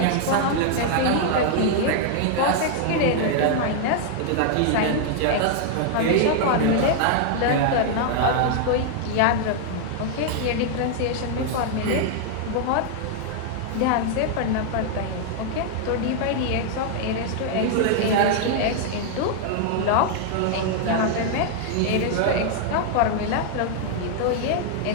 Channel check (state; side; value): different; both; correlation 0.00